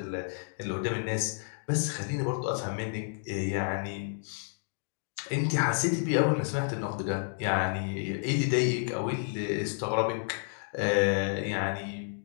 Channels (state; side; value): silent; right; 57 dB below the other